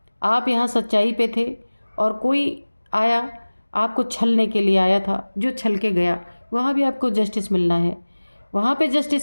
आप यहाँ सच्चाई पे थे और कोई आया, आपको छलने के लिए आया था, जो छल के गया। वहाँ भी आपको जस्टिस मिलना है। वहाँ पे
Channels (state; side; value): inverted; both; correlation -1.00